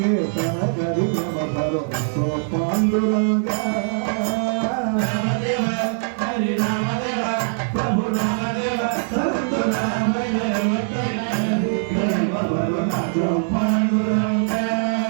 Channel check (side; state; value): left; silent; digital silence